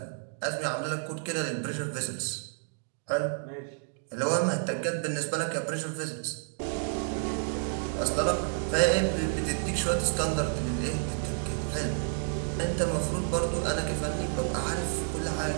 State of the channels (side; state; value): left; silent; digital silence